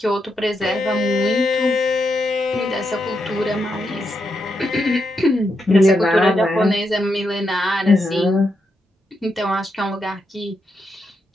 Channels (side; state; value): both; normal; correlation 0.83